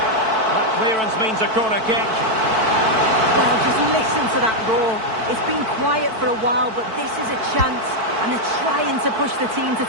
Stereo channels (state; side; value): late; left; 4.5 ms